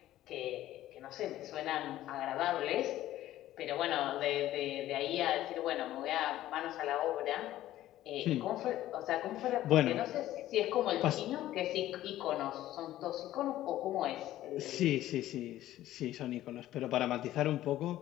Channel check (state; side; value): quieter; right; 14.1 dB